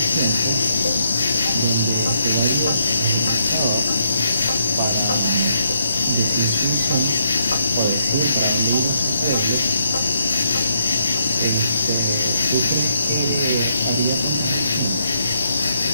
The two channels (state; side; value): inverted; both; correlation -0.76